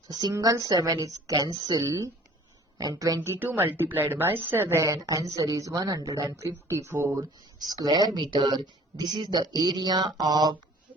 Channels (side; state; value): both; normal; correlation 0.50